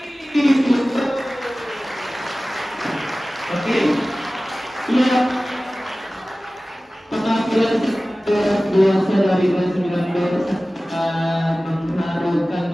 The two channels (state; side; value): normal; both; correlation 0.97